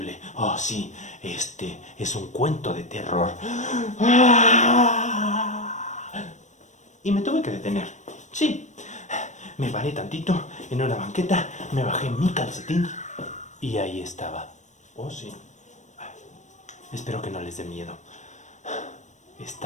Oh, sí, este es un cuento de terror. Y me tuve que detener. Sí, me paré tantito en una banqueta, me bajé mi calcetín y ahí estaba. Oh, sí. Espero que no les dé miedo.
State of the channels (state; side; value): late; right; 0.35 ms